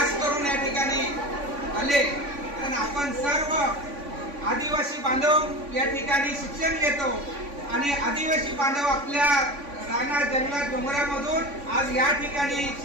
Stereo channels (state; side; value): late; left; 3.5 ms